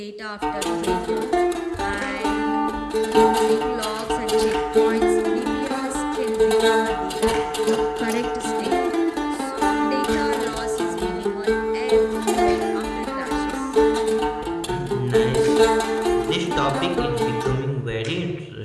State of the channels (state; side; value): identical; both; correlation 1.00